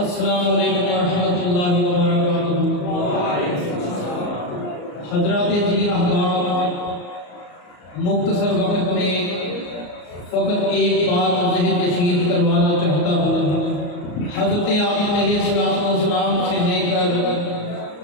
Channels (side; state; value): right; late; 34 ms